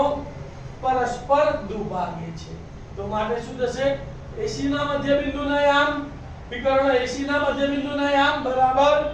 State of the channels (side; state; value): both; identical; correlation 1.00